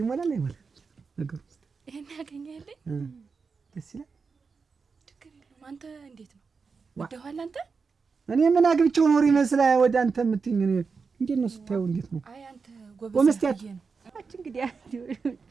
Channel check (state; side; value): quieter; left; 5.0 dB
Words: ይሞላል አይሞላ ነገር ውስጥ ይሄን ያገኘህልኝ ደስ ይላል ትክክል ነው አንተ እንዴት ነው ወደኋላ አንተ እኔ ምን አግብቼው ኖር ይመስላል ወደ አንተ የምትይኝ እንዴት ነው ስታየው እንዴት ነው አይ አንተ ጎበዝ እንግዲህ